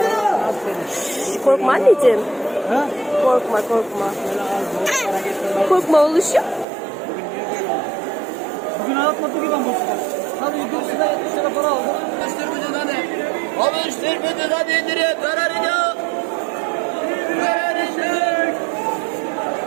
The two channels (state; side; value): drops out; left; at 6.7 s